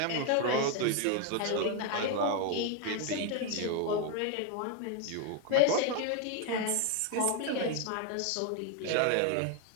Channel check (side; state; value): both; different; correlation 0.01